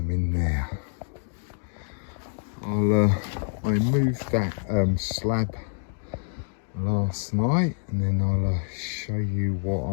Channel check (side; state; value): right; silent; digital silence